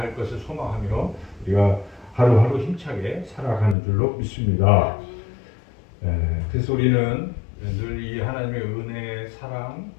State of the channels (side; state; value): right; drops out; at 3.8 s